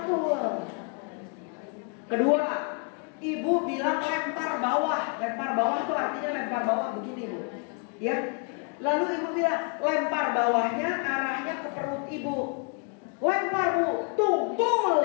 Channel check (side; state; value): right; quieter; 39.6 dB